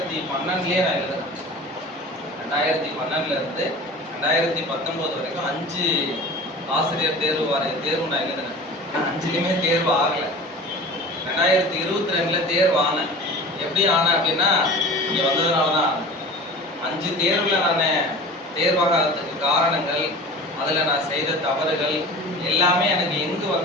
நான் எழுதுறேன். 2012 இருந்து 2019 வரைக்கும் 5 ஆசிரியர் தேர்வு நான் எழுதுனேன். 5லையுமே தேர்வு ஆகலை. 2022 தேர்வு ஆனேன். எப்படி ஆனேன் அப்படின்னா இங்கே வந்ததுனால தான். 5 தேர்வில் நான் தேர்வாகிறதுக்கு காரணங்கள், அதில் நான் செய்த தவறுகள் எல்லாமே எனக்கு எங்கு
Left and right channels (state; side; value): normal; both; correlation 0.37